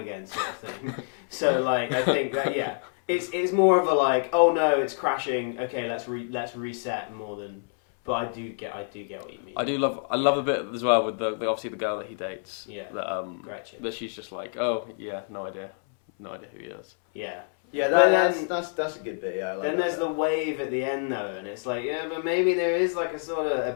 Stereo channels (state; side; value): silent; right; 60 dB below the other